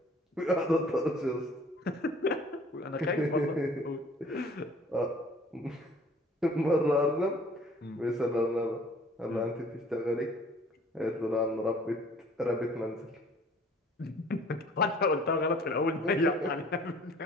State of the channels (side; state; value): both; normal; correlation 0.53